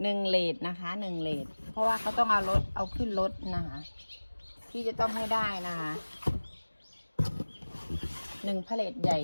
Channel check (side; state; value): both; inverted; correlation -1.00